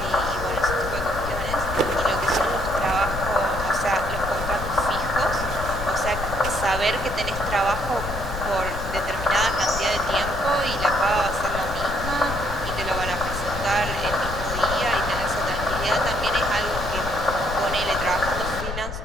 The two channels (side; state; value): left; noise; rumble, 7 dB below the sound